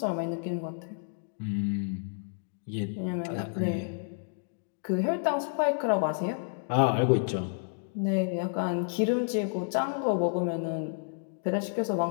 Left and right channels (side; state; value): right; silent; digital silence